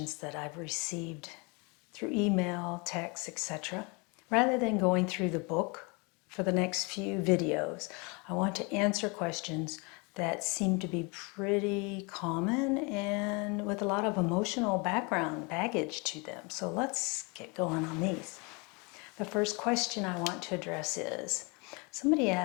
that I've received through email, text, etc. Rather than going through the book for the next few videos, I want to answer questions that seem to be pretty common and with a lot of emotional baggage to them. So let's get going on these. The first question I want to address is, somebody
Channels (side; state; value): right; quieter; 30.1 dB